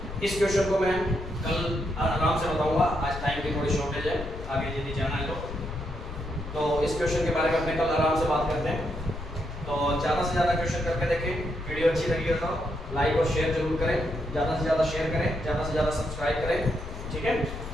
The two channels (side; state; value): left; noise; rumble, 10 dB below the sound